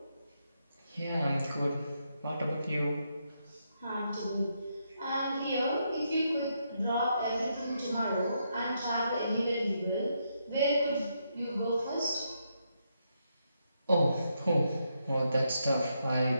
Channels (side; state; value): both; inverted; correlation -0.79